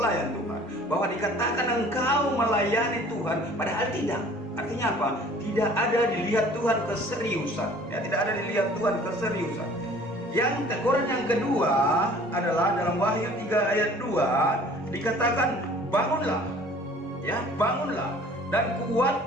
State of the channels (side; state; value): both; normal; correlation 0.50